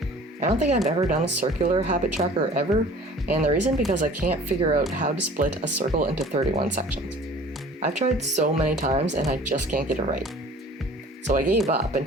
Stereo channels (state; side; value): normal; both; correlation 0.47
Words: I don't think I've ever done a circular habit tracker ever, and the reason because I can't figure out how to split a circle into 31 sections. I've tried so many times and I just can't get it right. So I gave up